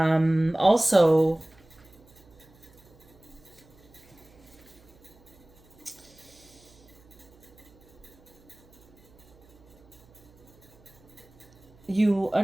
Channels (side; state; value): right; noise; hum, 27 dB below the sound